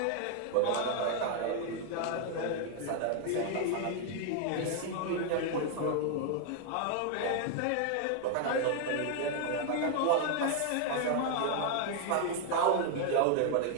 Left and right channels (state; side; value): different; both; correlation 0.00